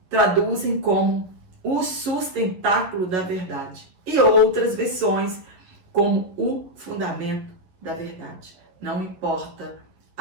traduzem como o sustentáculo da verdade. E outras versões como o fundamento da verdade. Não importa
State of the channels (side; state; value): left; late; 11 ms